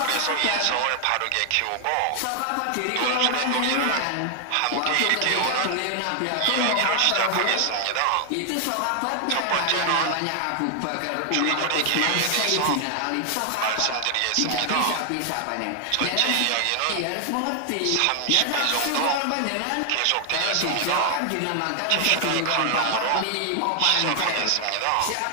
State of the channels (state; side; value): different; both; correlation 0.00